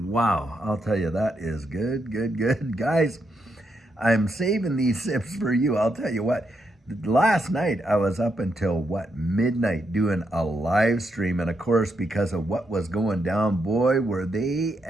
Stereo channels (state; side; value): normal; both; correlation 0.80